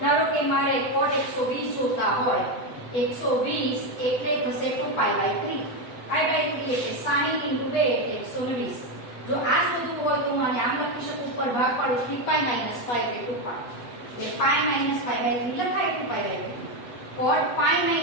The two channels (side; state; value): right; late; 7.9 ms